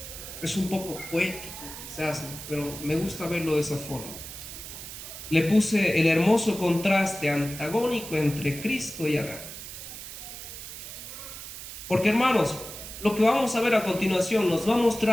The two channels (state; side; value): noise; right; hiss, 11 dB below the sound